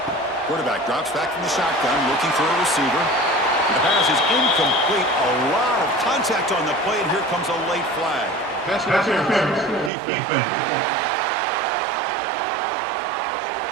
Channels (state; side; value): drops out; left; at 9.9 s